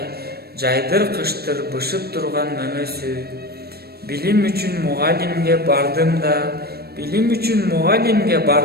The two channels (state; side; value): late; left; 0.46 ms